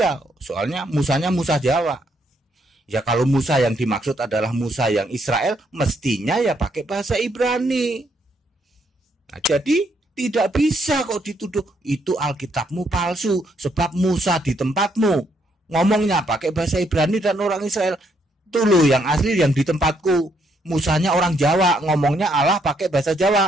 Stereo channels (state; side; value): normal; both; correlation 0.73